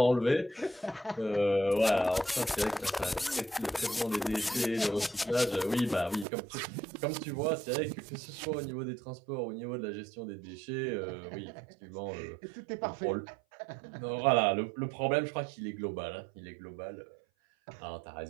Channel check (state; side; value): drops out; left; at 6.2 s